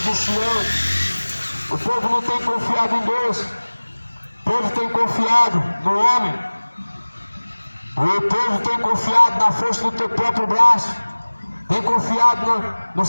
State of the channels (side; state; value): both; inverted; correlation -1.00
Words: de Sião. O povo não tem confiado em Deus. O povo tem confiado no homem. O povo tem confiado na força do teu próprio braço. Tem confiado nos